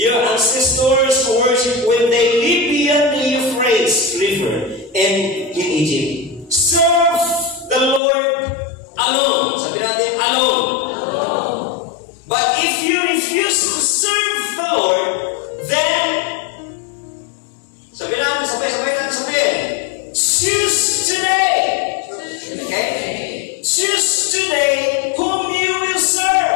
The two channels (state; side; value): drops out; right; at 8.0 s